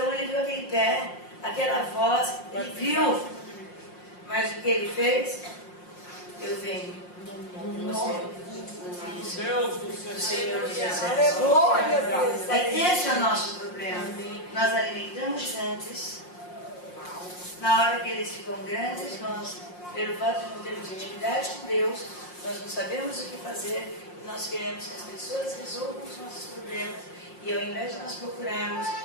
ele viu aquele pé, aquela voz, ele viu. Mas o que ele fez? Eu venho. Deus do Senhor Jesus. Aleluia, Deus. Esse é o nosso problema. Nós alimentamos gigantes. Na hora que eles ficam grandes, nós, pelo fato de não termos intimidade com Deus, nós não sabemos o que fazer. Nós queremos que as pessoas resolvam os nossos problemas. E ao invés de nós procurarmos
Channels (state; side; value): late; right; 5.6 ms